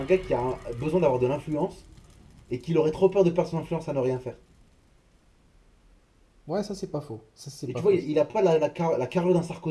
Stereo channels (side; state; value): both; identical; correlation 1.00